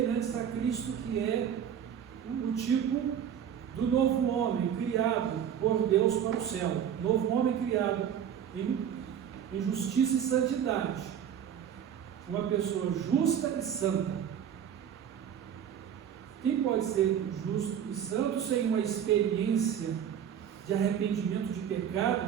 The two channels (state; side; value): quieter; left; 8.9 dB